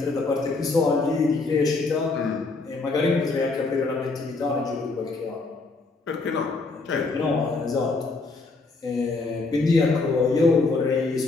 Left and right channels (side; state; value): right; quieter; 3.7 dB